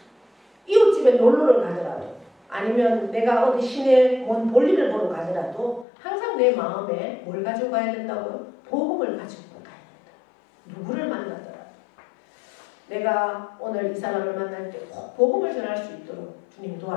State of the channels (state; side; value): drops out; right; at 5.9 s